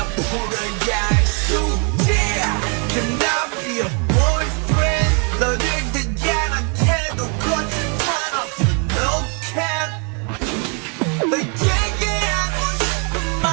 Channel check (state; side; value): quieter; left; 37.1 dB